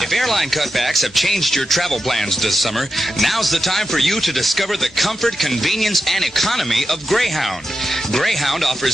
If airline cutbacks have changed your travel plans this summer, now's the time for you to discover the comfort, convenience, and economy of Greyhound. Greyhound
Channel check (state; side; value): normal; both; correlation 0.89